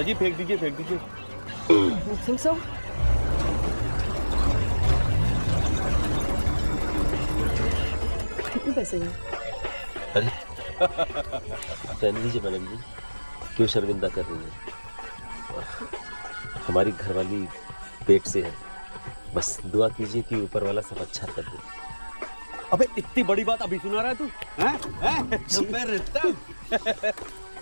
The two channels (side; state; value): both; inverted; correlation -1.00